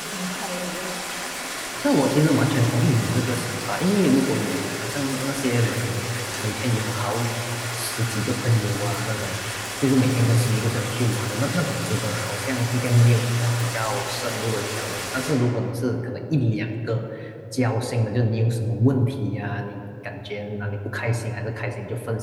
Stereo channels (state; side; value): identical; both; correlation 1.00